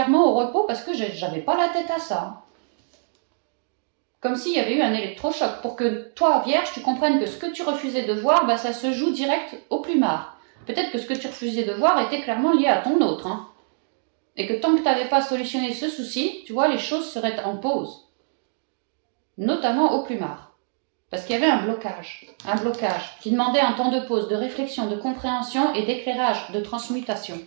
au repos parce que j'avais pas la tête à ça. Hein. Comme s'il y avait eu un électrochoc, pour que toi, Vierge, tu comprennes que ce que tu refusais de voir, bah, ça se joue direct au plumard. Peut-être que ce que tu refusais de voir était clairement lié à ton autre. Hein. Et que tant que tu n'avais pas solutionné ce souci, tu vois, les choses seraient en pause. Notamment au plumard. Parce qu'il y avait un blocage qui demandait un temps de pause, de réflexion, de compréhension et d'éclairage, de transmutation.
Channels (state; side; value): silent; left; digital silence